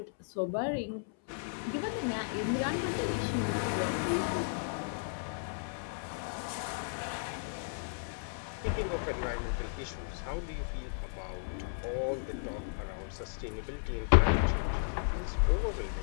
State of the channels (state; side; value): silent; right; 55 dB below the other